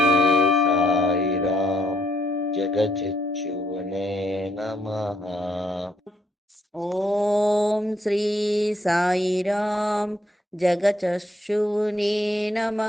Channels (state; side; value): normal; both; correlation 0.72